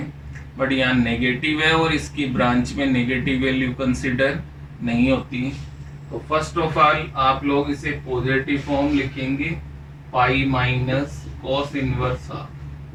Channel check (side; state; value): both; identical; correlation 1.00